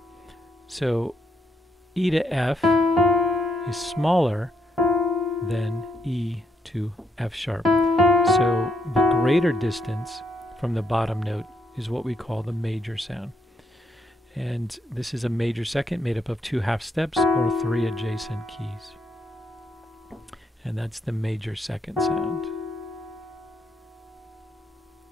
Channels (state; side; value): normal; both; correlation 0.77